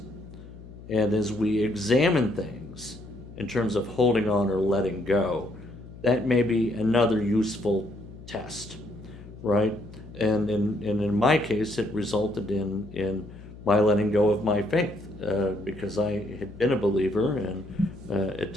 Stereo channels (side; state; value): left; noise; hum, 17 dB below the sound